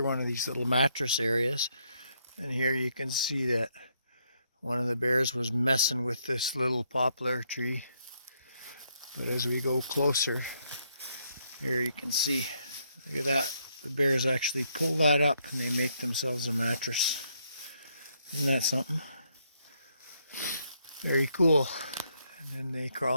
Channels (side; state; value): both; inverted; correlation -0.74